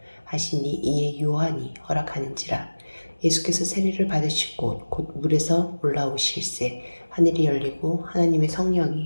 하시니 이에 요한이 허락하는지라. 예수께서 세례를 받으시고 곧 물에서 올라오실새 하늘이 열리고 하나님의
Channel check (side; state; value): both; inverted; correlation -1.00